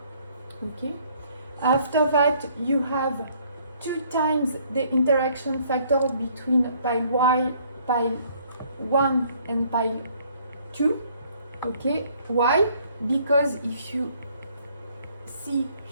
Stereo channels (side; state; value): both; inverted; correlation -0.62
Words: Okay, after that you have 2 times the interaction factor between pile 1 and pile 2. Okay, why? Because if you see